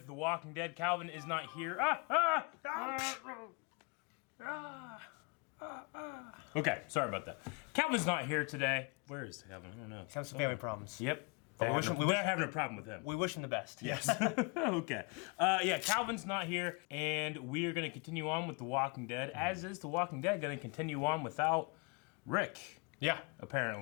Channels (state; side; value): quieter; right; 31.6 dB